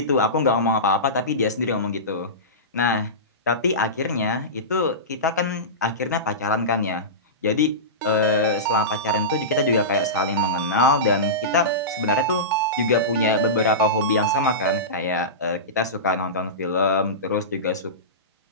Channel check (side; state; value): both; normal; correlation -0.19